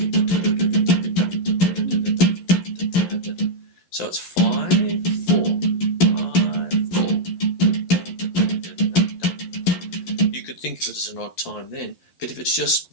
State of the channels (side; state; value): right; late; 11 ms